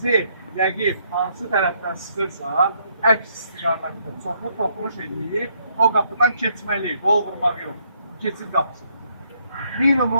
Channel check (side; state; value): both; inverted; correlation -0.71